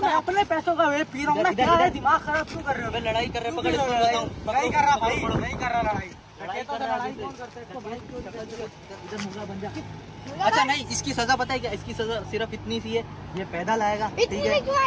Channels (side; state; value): both; identical; correlation 1.00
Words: मैं अपने पैसों का वेप पी रहा हूँ ना, दिमाग खराब क्यों कर रहे हो? लड़ाई कर रहे हो, पकड़ इसको बताऊं। नहीं कर रहा भाई, नहीं कर रहा लड़ाई। लड़ाई कौन करता है? इधर मुर्गा बन जा। अच्छा नहीं, इसकी सजा पता है क्या? इसकी सजा सिर्फ इतनी सी है, ये पैदल आएगा। ठीक है